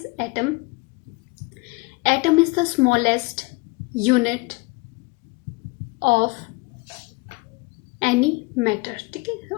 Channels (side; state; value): right; quieter; 26.5 dB